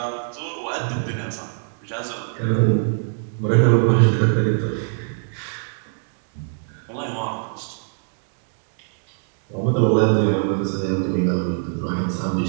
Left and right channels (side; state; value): left; silent; digital silence